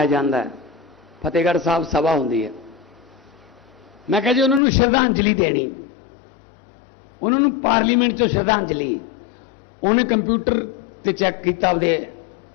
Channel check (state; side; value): drops out; right; at 4.6 s